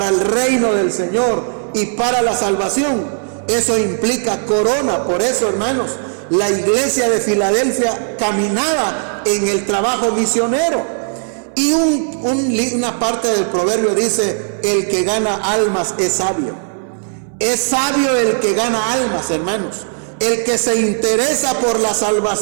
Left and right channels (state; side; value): silent; left; digital silence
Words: el reino del Señor y para la salvación, eso implica corona. Por eso, hermanos, la iglesia de Filadelfia caminaba en el trabajo misionero. Y una parte del proverbio dice: el que gana almas es sabio. Es sabio el que gana almas, hermanos. El que se interesa por la